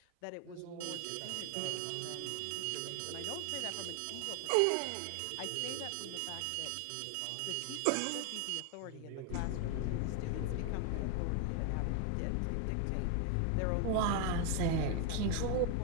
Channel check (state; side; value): different; both; correlation 0.01